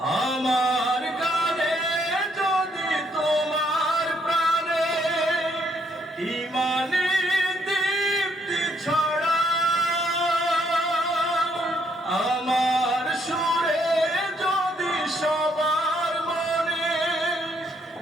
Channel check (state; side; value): normal; both; correlation 0.71